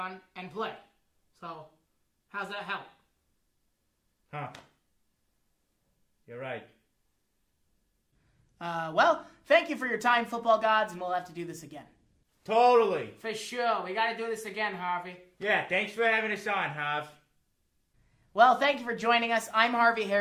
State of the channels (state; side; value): identical; both; correlation 1.00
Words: and play. So, how's that help? Huh. You're right. Well, thank you for your time, Football Gods, and we'll have to do this again. Totally. For sure. We gotta do this again, Harvey. Yeah, thanks for having us on, Harv. Well, thank you for joining us. I'm Harvey